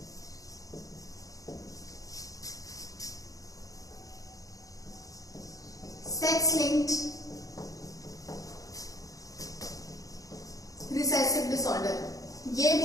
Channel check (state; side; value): late; right; 0.17 ms